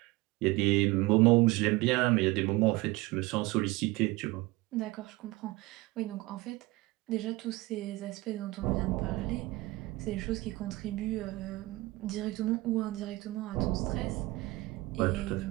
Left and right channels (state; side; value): quieter; left; 20.7 dB